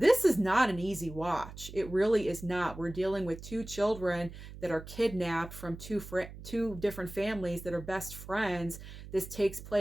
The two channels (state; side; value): noise; right; hum, 14 dB below the sound